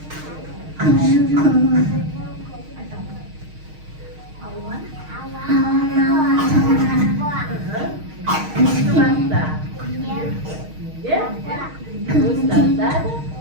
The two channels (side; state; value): left; late; 6.4 ms